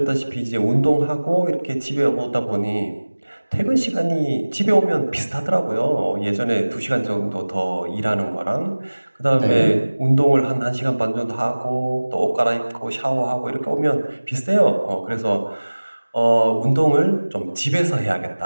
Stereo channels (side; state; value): both; inverted; correlation -1.00